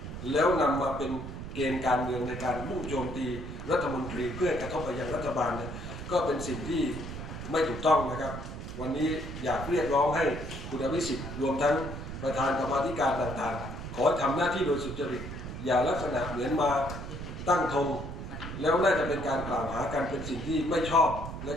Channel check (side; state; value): right; noise; rumble, 8 dB below the sound